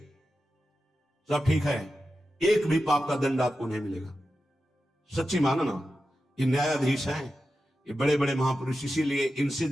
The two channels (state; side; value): normal; both; correlation 0.91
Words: सब ठीक है, एक भी पाप का दंड आपको नहीं मिलेगा। सच्ची मानो ना, ये न्यायाधीश हैं, ये बड़े बड़े महापुरुष, इसीलिए इनसे